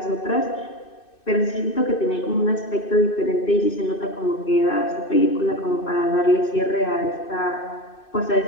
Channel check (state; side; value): late; right; 2.6 ms